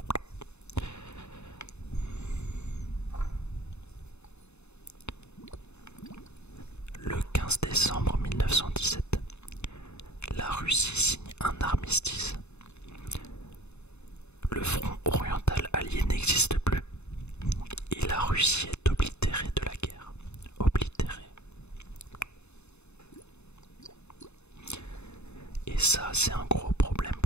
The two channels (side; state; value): right; late; 0.81 ms